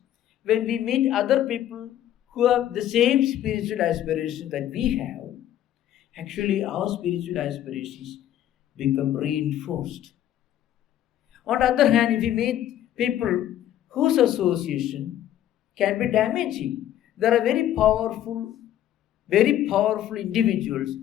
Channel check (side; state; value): right; quieter; 11.8 dB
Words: when we meet other people who have the same spiritual aspirations that we have, actually our spiritual aspirations become reinforced. On the other hand, if we meet people whose association can be damaging, there are very powerful individuals